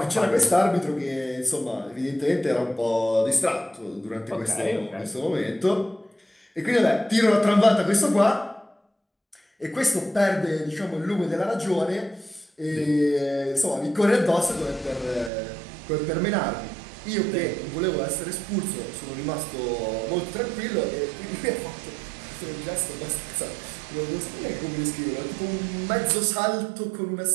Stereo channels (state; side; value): drops out; left; at 15.3 s